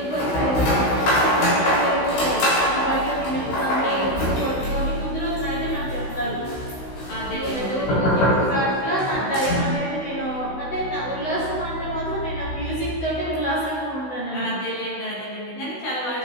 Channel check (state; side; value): late; right; 16 ms